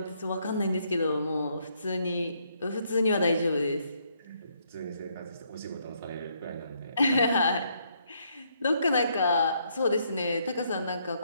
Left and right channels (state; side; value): inverted; both; correlation -0.73